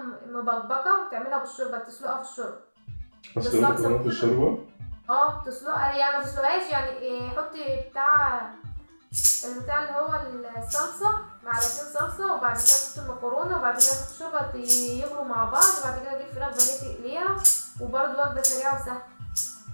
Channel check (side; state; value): both; inverted; correlation -1.00